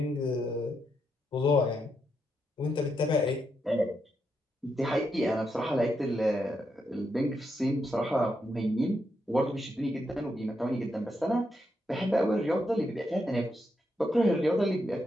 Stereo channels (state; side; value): normal; both; correlation 0.82